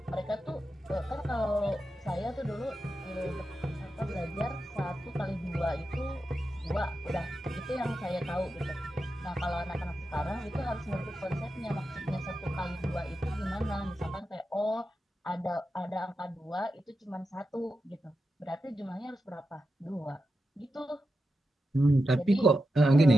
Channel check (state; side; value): normal; both; correlation 0.89